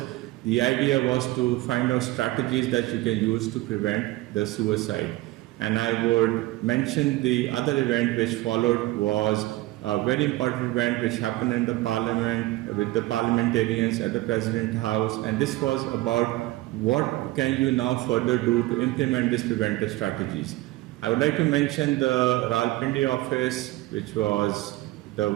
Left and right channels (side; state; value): left; quieter; 18.7 dB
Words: The idea was to find out strategies that you can use to prevent the suicide. And I would mention the other event which followed was a very important event which happened in the parliament with the parliamentarians at the President House, and this was about what can you now further do to implement these preventive strategies. I would like to mention the Rawalpindi office, which was the